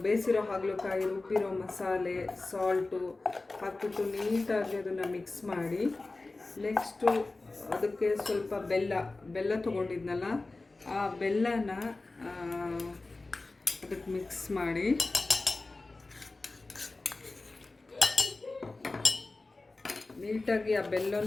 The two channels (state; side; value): quieter; right; 3.3 dB